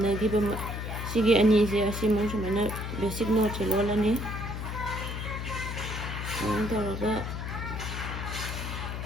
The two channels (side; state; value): left; noise; hum, 5 dB below the sound